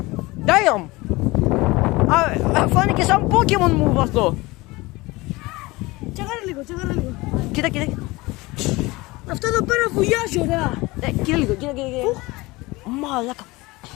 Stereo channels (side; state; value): right; quieter; 22.0 dB